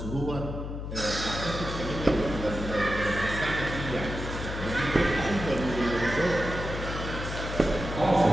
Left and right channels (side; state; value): left; noise; hum, 6 dB below the sound